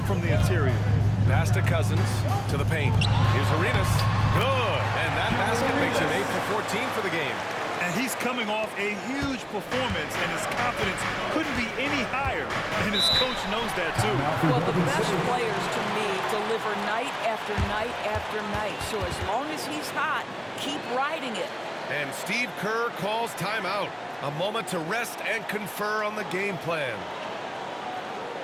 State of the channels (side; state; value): both; identical; correlation 1.00